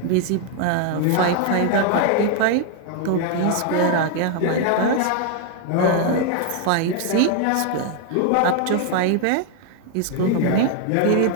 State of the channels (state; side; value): different; both; correlation 0.00